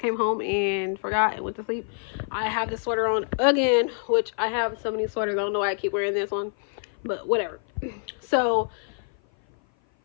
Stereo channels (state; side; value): silent; right; 56 dB below the other